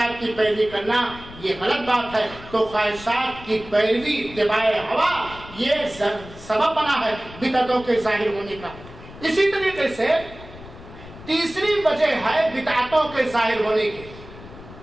کی پیروی کرنا یہ غلط بات ہے۔ تو خواہشات کی پیروی، اتباع ہوا، یہ سبب بنا ہے بدعتوں کے ظاہر ہونے کا۔ اسی طریقے سے تیسری وجہ ہے بدعتوں کے ظاہر ہونے کی،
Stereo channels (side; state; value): left; noise; rumble, 17 dB below the sound